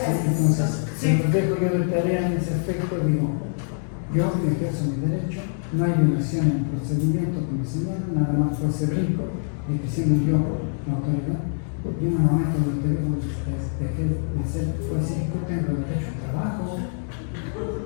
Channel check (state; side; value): silent; right; digital silence